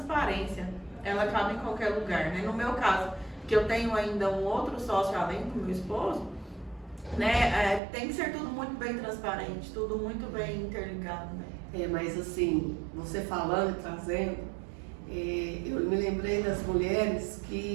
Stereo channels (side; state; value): left; drops out; at 7.8 s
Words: ela cabe em qualquer lugar, né? No meu caso, que eu tenho ainda um outro sócio além do meu esposo, né? Tem que ser tudo muito bem transparente, tudo muito bem interligado, né? Mas assim, você falando e trazendo, eu me lembrei das mulheres